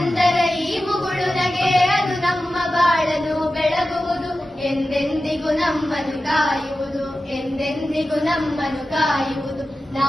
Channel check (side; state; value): both; normal; correlation 0.93